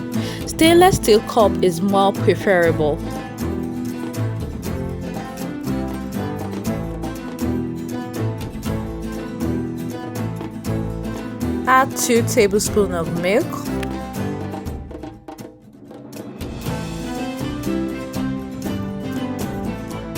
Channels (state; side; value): identical; both; correlation 1.00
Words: Stainless steel cup is more preferable. Add 2 tablespoons of milk.